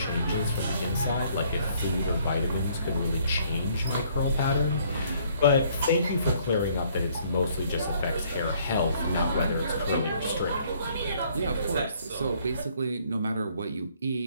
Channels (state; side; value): inverted; both; correlation -0.63